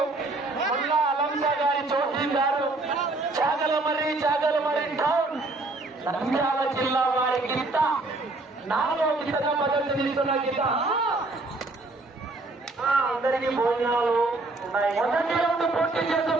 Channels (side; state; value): left; quieter; 3.1 dB